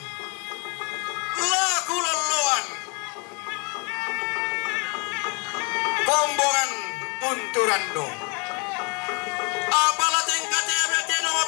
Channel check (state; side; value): quieter; right; 31.3 dB